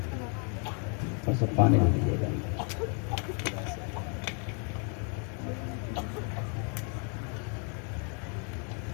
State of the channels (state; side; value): quieter; right; 39.1 dB